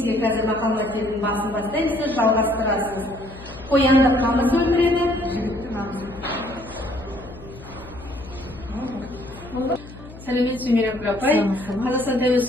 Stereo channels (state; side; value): noise; left; hum, 17 dB below the sound